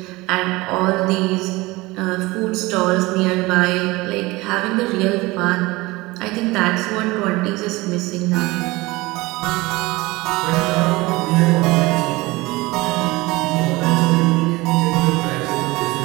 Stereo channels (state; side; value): quieter; left; 21.6 dB